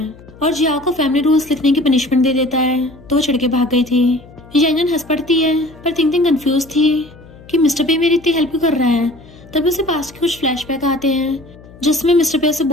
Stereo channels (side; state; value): left; noise; hum, 21 dB below the sound